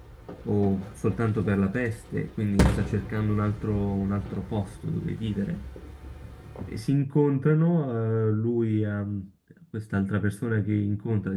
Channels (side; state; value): both; identical; correlation 1.00